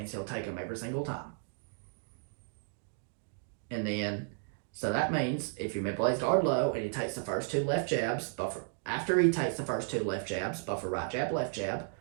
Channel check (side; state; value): left; silent; 55 dB below the other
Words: he'll take them every single time. And then, so that means if you manipulate guard low and he takes the first two left jabs, buffer. After he takes the first two left jabs, buffer right jab, left jab.